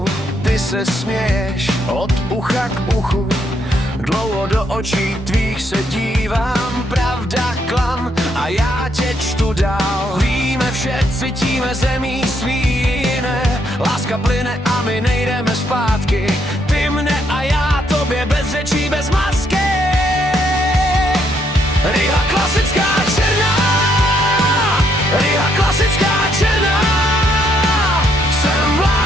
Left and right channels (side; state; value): both; normal; correlation 0.73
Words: ty se směješ od ucha k uchu. Dlouho do očí tvých se dívám, pravda, klam a já tě čtu dál. Víme vše, cítíme zemí svý jiné, láska plyne a my nejdeme zpátky. Ty mne a já tobě bez řečí, bez masky. Riha klasická černá, Riha klasická černá. Jsem v